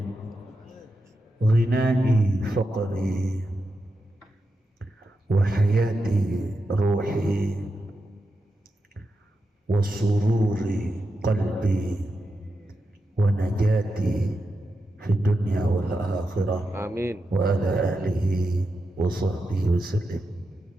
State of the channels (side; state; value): both; normal; correlation 0.88